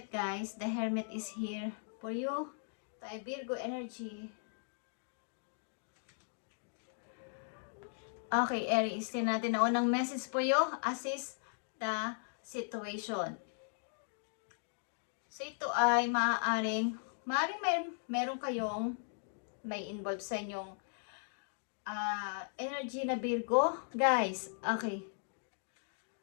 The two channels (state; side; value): silent; right; digital silence